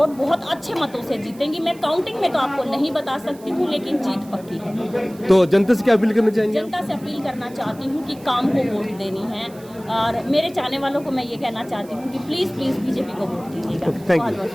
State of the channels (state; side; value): noise; right; hiss, 24 dB below the sound